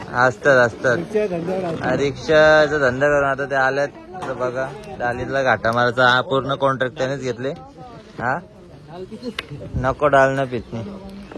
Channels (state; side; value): identical; both; correlation 1.00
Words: असतात रिक्षाचा धंदा करून आता ते आल्यात। तर बघा, डालीला घाटा मारायचा हा पूर्ण कॉन्ट्रॅक्ट त्यानेच घेतले। हा नको डाल ना पितनी।